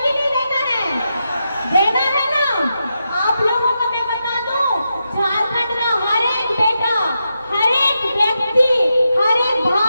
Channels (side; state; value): both; inverted; correlation -0.86